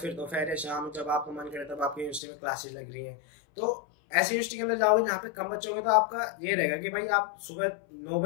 दोपहर या शाम जब आपका मन करे तब आपकी यूनिवर्सिटी में क्लासेस लग रही हैं। तो ऐसी यूनिवर्सिटी के अंदर जाओगे जहाँ पे कम बच्चे होंगे, तो आपका ये रहेगा कि भाई आप सुबह 9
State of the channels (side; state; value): right; drops out; at 2.2 s